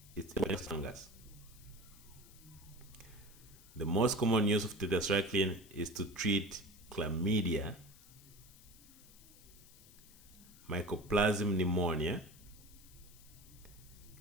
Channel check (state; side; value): noise; left; hiss, 22 dB below the sound